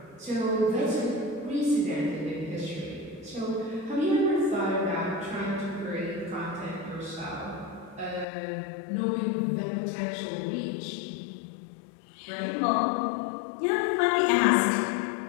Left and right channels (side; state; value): right; drops out; at 8.2 s